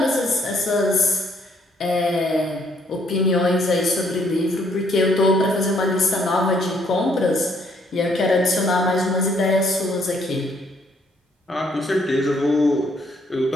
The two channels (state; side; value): normal; both; correlation 0.68